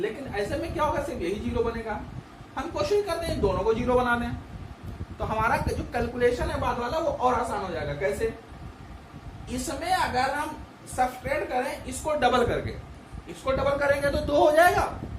ऐसे में क्या होगा, सिर्फ यही 0 बनेगा। हम कोशिश करते हैं इन दोनों को 0 बना दें, तो हमारा जो कैलकुलेशन है बाद वाला वो और आसान हो जाएगा। कैसे? इसमें अगर हम सब्ट्रैक्ट करें इसको डबल करके, इसको डबल करेंगे तो 2 हो जाएगा,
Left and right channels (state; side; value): identical; both; correlation 1.00